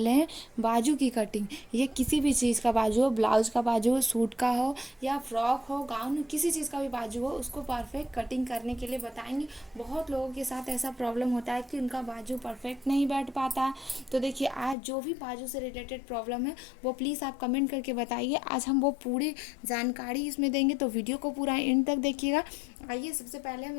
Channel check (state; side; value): drops out; right; at 14.8 s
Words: हैं बाजू की कटिंग। ये किसी भी चीज़ का बाजू हो, ब्लाउज का बाजू हो, सूट का हो या फ्रॉक हो, गाउन हो, किसी चीज़ का भी बाजू हो, उसको परफेक्ट कटिंग करने के लिए बताएंगे। बहुत लोगों के साथ ऐसा प्रॉब्लम होता है कि उनका बाजू परफेक्ट नहीं बैठ पाता। तो देखिए, आज जो भी बाजू से रिलेटेड प्रॉब्लम है वो प्लीज़ आप कमेंट करके बताइए। आज हम वो पूरी जानकारी इसमें देंगे, तो वीडियो को पूरा एंड तक देखिएगा। आइए सबसे पहले हम